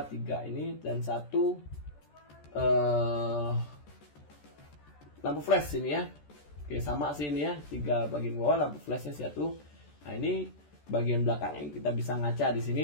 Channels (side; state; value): right; late; 14 ms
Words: ini dan satu lampu flash ini ya. Oke, sama sih ini ya, 3 bagian bawah lampu flashnya satu. Nah, ini bagian belakangnya kita bisa ngaca di